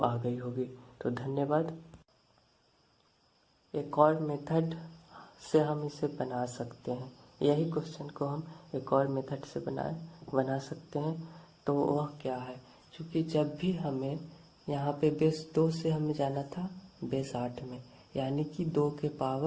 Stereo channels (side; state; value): both; identical; correlation 1.00